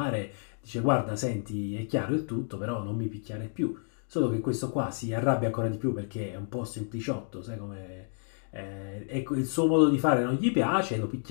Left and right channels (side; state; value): right; silent; digital silence